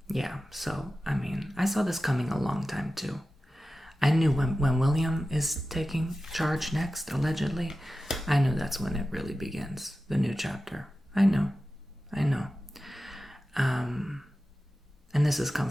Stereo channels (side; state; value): both; normal; correlation 0.94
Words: Yeah, so, I mean, I saw this coming a long time, too. I knew when William is taking charge next, allegedly, I knew that's when it really begins, the new chapter. I know. And this is